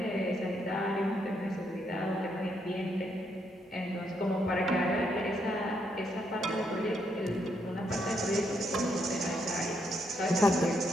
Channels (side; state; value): both; normal; correlation 0.76